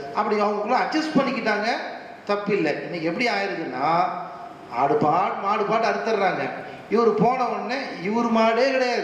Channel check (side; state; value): both; identical; correlation 1.00